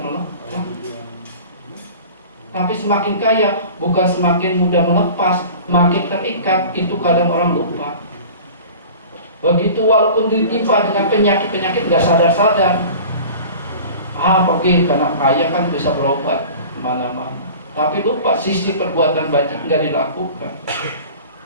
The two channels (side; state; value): both; inverted; correlation -0.40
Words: melepas. Tapi semakin kaya bukan semakin mudah melepas, makin terikat. Itu kadang orang lupa. Begitu walaupun ditimpa dengan penyakit-penyakit nggak sadar-sadar. Pergi karena kaya kan bisa berobat kemana-mana. Tapi lupa sisi perbuatan baik nggak dilakukan.